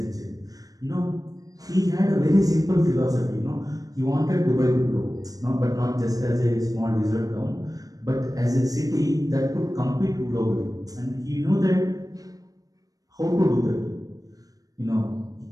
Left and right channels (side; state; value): left; late; 0.18 ms